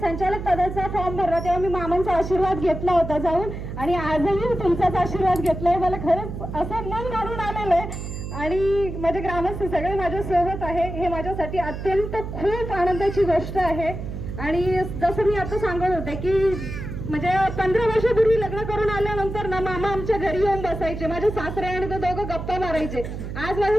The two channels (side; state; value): right; noise; hum, 7 dB below the sound